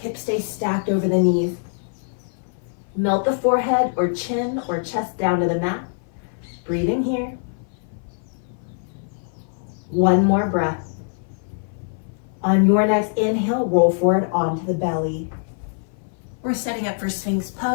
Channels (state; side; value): silent; right; 58 dB below the other